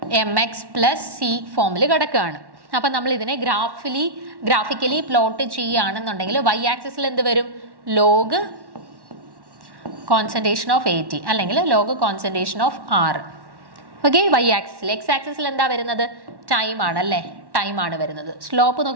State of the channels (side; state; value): left; late; 1.1 ms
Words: MX plus C ഫോമിൽ കിടക്കുകയാണ്. അപ്പം നമ്മൾ ഇതിനെ ഗ്രാഫിക്കലി പ്ലോട്ട് ചെയ്യുകയാണെന്നുണ്ടെങ്കിൽ y ആക്സിസിൽ എന്ത് വരും? ലോഗ് കോൺസെൻട്രേഷൻ ഓഫ് AT അല്ലെങ്കിൽ log concentration of R. Okay, y ആക്സിസിൽ. x ആക്സിസിൽ എന്താ വരുന്നത്? ടൈം ആണ് അല്ലേ, ടൈം ആണ് വരുന്നത്. സ്ലോപ്പ്